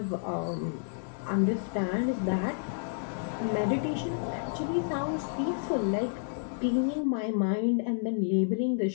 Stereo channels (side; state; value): right; silent; digital silence